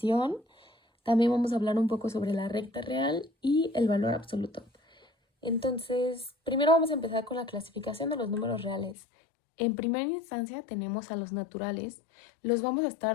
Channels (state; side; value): drops out; right; at 9.0 s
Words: También vamos a hablar un poco sobre la recta real y el valor absoluto. Entonces, primero vamos a empezar con la clasificación de los números reales. En primera instancia tenemos a los naturales. Los vamos a